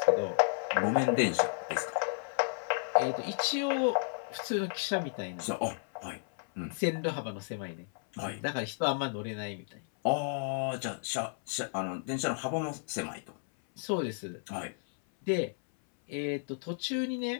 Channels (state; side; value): silent; right; 56 dB below the other